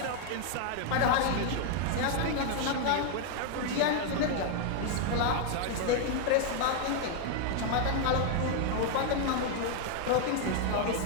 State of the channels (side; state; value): both; different; correlation 0.00